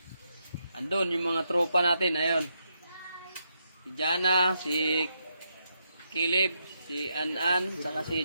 Andun yung mga tropa natin, ayun. Si Jana, si Kilib, si An, saka si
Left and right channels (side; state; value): both; inverted; correlation -0.81